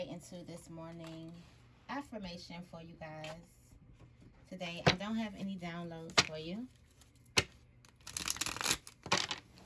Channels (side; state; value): both; identical; correlation 1.00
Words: into this morning affirmation for you guys. Today, I don't have any downloads for you.